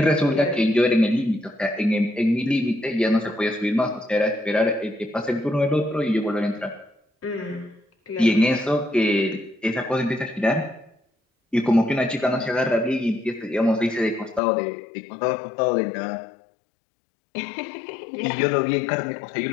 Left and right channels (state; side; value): drops out; right; at 14.4 s